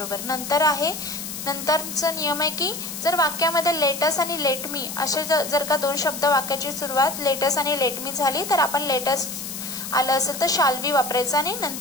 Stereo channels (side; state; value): left; noise; hiss, 8 dB below the sound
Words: नंतरचा नियम आहे की जर वाक्यामध्ये लेटस आणि लेट मी असे जर का दोन शब्द वाक्याची सुरुवात लेटस आणि लेट मी झाली तर आपण लेटस आलं असेल तर शाल्वी वापरायचं आणि